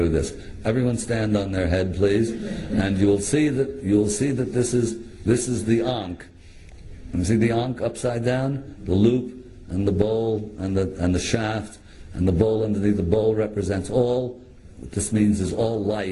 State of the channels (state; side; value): identical; both; correlation 1.00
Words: this. Everyone stand on their head, please, and you'll see that this is the Ankh. You see the Ankh upside down, the loop, and the bowl, and the shaft, and the bowl underneath. The bowl represents all. What this means is all